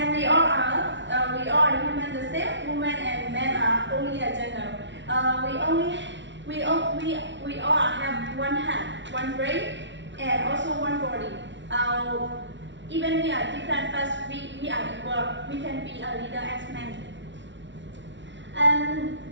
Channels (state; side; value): late; left; 0.53 ms